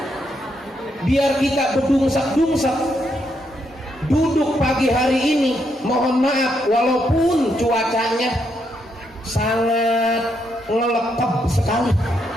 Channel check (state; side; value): normal; both; correlation 0.78